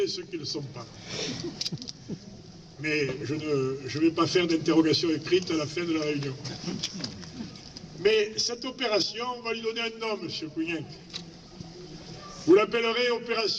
et ceux qui ne le sont pas. Mais je ne vais pas faire d'interrogation écrite à la fin de la réunion. Mais cette opération, on va lui donner un nom, M. Cougnac. Vous l'appellerez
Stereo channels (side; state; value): both; identical; correlation 1.00